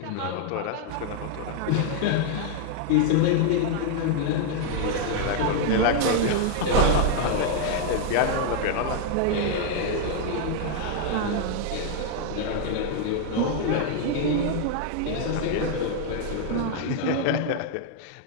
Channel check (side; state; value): both; different; correlation 0.00